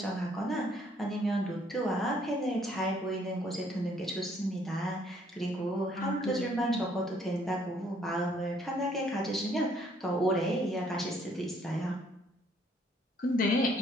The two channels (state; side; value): normal; both; correlation 0.64